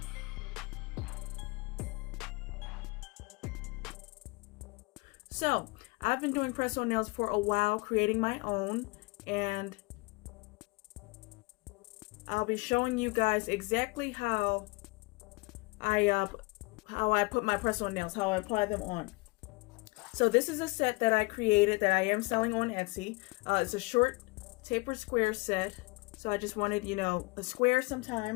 So I've been doing press-on nails for a while, creating my own, and I'll be showing you guys exactly how I put my press-on nails, how I apply them on. So this is a set that I created that I am selling on Etsy. It's a short tapered square set. So I just wanted, you know, a square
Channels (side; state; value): right; quieter; 25.8 dB